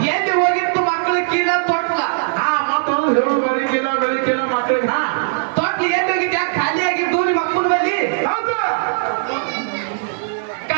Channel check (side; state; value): left; silent; 56 dB below the other